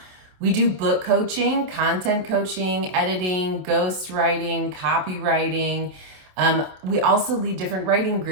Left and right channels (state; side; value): late; left; 27 ms